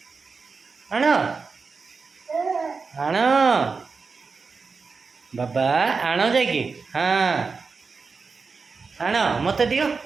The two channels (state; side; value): quieter; left; 4.7 dB